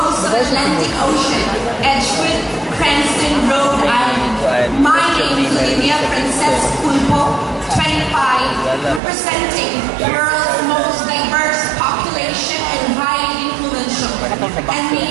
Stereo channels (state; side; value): drops out; left; at 9.0 s